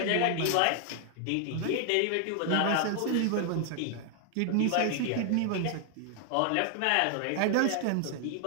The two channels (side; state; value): both; different; correlation 0.00